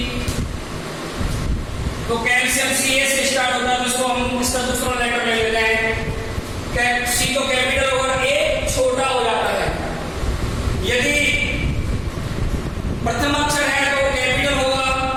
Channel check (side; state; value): both; identical; correlation 1.00